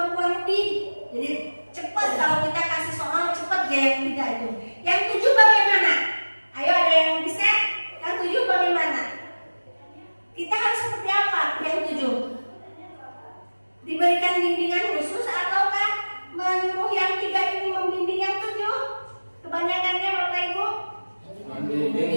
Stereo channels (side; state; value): both; inverted; correlation -1.00